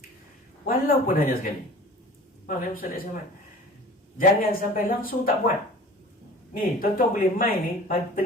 Walaupun hanya sekali. Faham ya Ustaz Ahmad? Jangan sampai langsung tak buat. Ni, tuan-tuan boleh main ni pagi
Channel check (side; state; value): both; normal; correlation 0.43